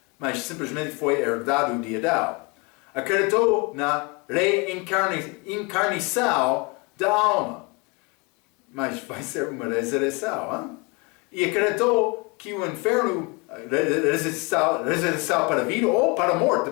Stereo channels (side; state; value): right; quieter; 29.4 dB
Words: mas simplesmente foi herdado de Adão. Acreditou na reencarnação da alma, mas vai ser uma ressurreição. E acreditou que o inferno, ressurreição para a vida ou para a morte,